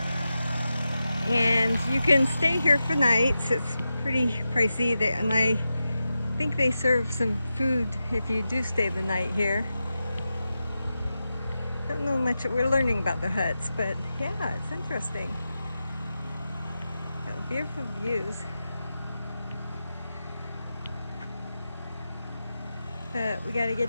And you can stay here for nights. It's pretty pricey. And I think they serve some food if you do stay the night here. Don't know much. We're learning about the huts, but yeah, it's interesting. Got beautiful views. But we gotta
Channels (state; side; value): inverted; both; correlation -0.91